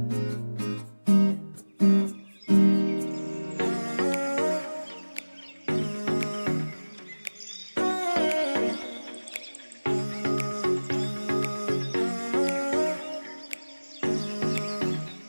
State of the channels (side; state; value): both; inverted; correlation -1.00